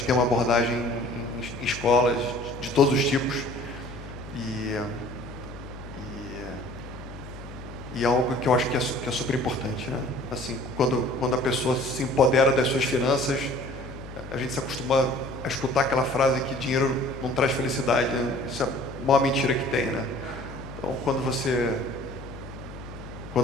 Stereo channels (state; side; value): noise; left; hum, 14 dB below the sound